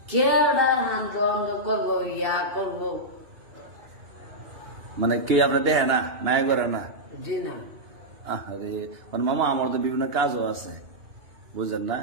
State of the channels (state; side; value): late; left; 2.9 ms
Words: কেডা হান্দ করবো ইয়া করবো। মানে কে আপনি দেখে না, মায়া করে না? জি না। আরে মানে মামা আমার তো বিভিন্ন কাজও আছে, বুঝলেন না?